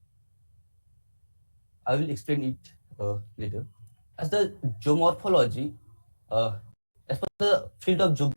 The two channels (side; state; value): both; inverted; correlation -1.00